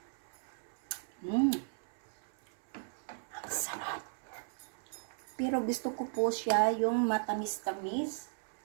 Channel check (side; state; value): left; silent; 54 dB below the other